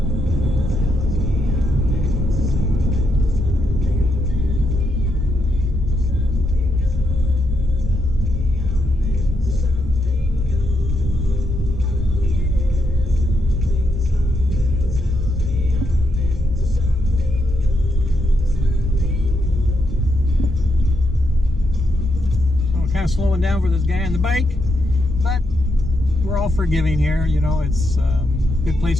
Slowing down for this guy on the bike, but we're all forgiving here. You know, it's a good place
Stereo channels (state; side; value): normal; both; correlation 0.81